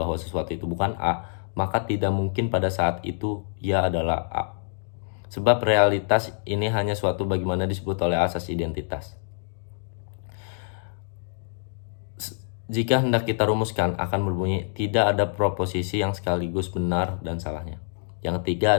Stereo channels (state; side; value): silent; right; digital silence